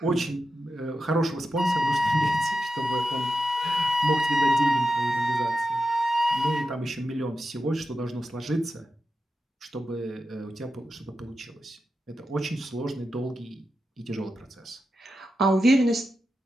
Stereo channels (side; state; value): both; normal; correlation 0.90